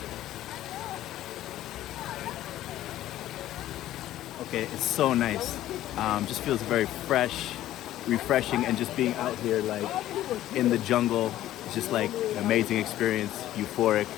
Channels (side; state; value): right; quieter; 13.7 dB